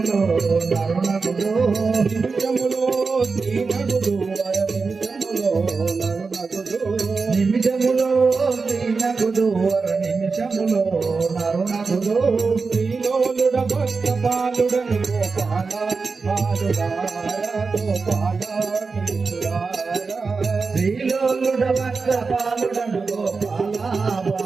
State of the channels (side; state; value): left; quieter; 4.5 dB